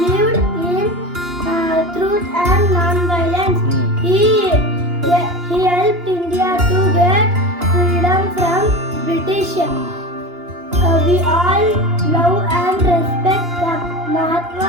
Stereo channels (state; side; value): late; left; 2.9 ms